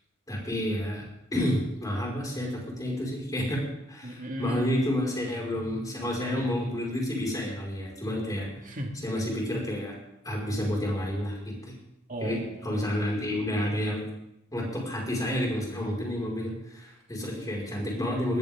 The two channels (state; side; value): normal; both; correlation 0.71